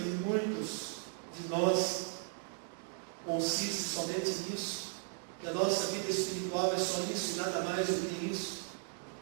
muitos de nós consiste somente nisso? Que a nossa vida espiritual é só isso e nada mais do que isso?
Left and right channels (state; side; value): silent; left; 54 dB below the other